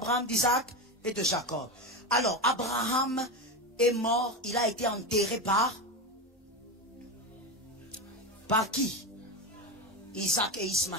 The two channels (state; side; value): normal; both; correlation 0.18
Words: d'Isaac et de Jacob. Alors, Abraham est mort. Il a été enterré par qui? Isaac et